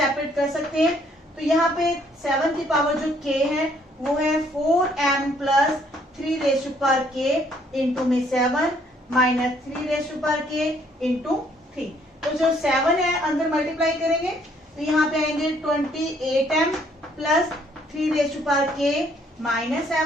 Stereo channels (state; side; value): normal; both; correlation 0.65